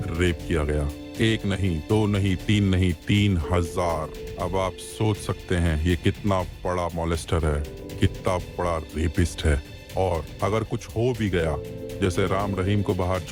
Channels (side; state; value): both; identical; correlation 1.00